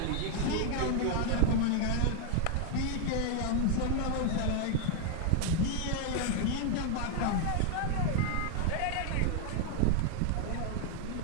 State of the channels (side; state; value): both; different; correlation 0.00